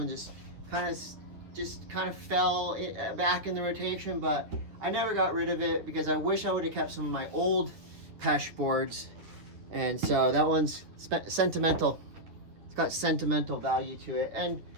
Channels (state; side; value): late; left; 9.7 ms